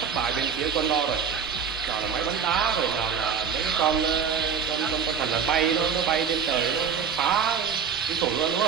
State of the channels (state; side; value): quieter; left; 6.8 dB